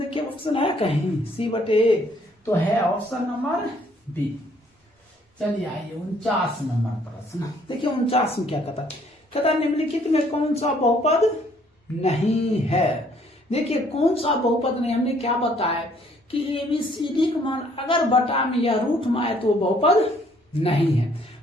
ऑप्शन है कहीं सी बटे ए, तो है ऑप्शन नंबर बी। चलिए आइए 49 नंबर प्रश्न देखिए। 49 में क्या कहता है निम्नलिखित में कौन सा बहुपद नहीं है। देखिए कौन सा बहुपद नहीं, हमने क्या बताया कि ABCD का मान अगर बटा में या रूट में आए तो बहुपद नहीं है।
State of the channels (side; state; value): both; normal; correlation 0.63